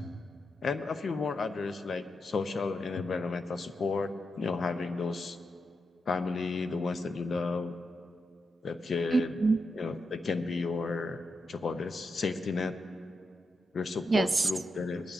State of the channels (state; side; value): normal; both; correlation 0.86